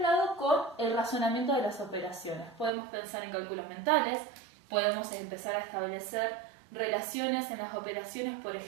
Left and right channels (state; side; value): drops out; left; at 2.7 s